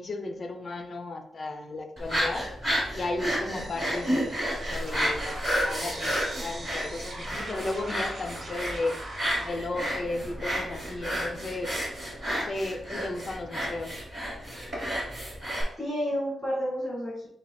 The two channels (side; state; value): both; normal; correlation 0.87